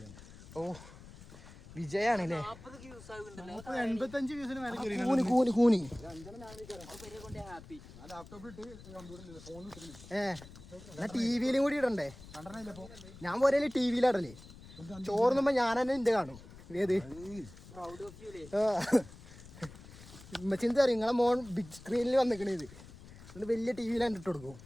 ഓ, വിജയാണല്ലേ. കൂനി എന്നാ ടിവിയിലും കൂടി ഇടണ്ടേ. ഞാൻ പോരല്ലേ ടിവിയിലിടല്ലേ. ചോറുന്നുമ്പോ ഞാൻ തന്നെ ഇന്റെ കാണും. ഏത് ഉമ്മച്ചിന്ത് അറിയും നിങ്ങളെ മോൻ ബിഗ് സ്ക്രീനിൽ വന്നിക്കണേ ഇത് എന്നിട്ട് വലിയ ടി വിയിലാണ് ഇട്ട് കൊടുക്കും.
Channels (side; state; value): left; noise; rumble, 18 dB below the sound